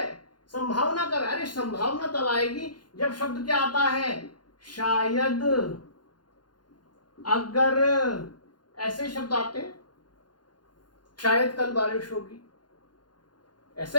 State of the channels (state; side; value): late; right; 0.71 ms